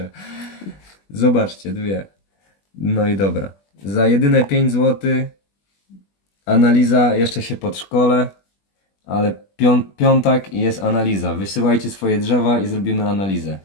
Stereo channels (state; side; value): late; right; 20 ms